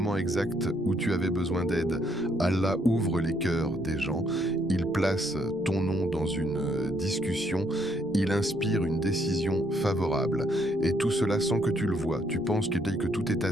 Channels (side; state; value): left; noise; rumble, 26 dB below the sound